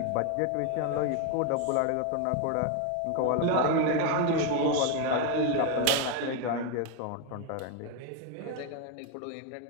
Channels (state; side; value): different; both; correlation 0.01